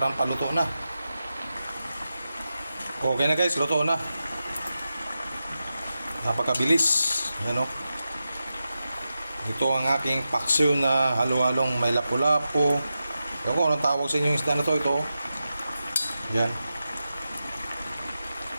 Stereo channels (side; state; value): both; inverted; correlation -0.91